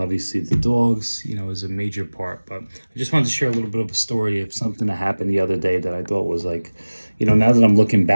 the dogs, is a major part. But I just wanted to share a little bit of a story of something that happened the other day that I thought was like, now that I'm looking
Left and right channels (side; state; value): both; inverted; correlation -1.00